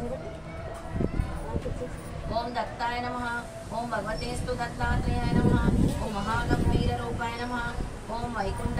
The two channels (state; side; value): identical; both; correlation 1.00